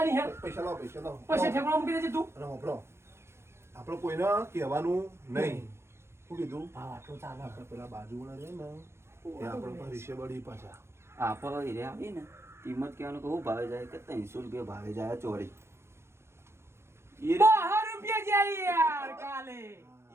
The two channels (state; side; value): late; left; 0.12 ms